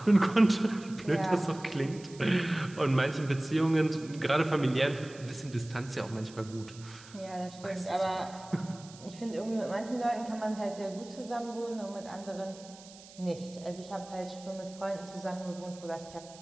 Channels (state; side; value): noise; right; hiss, 20 dB below the sound